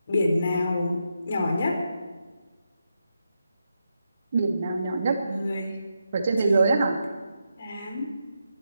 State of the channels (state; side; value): inverted; both; correlation -0.84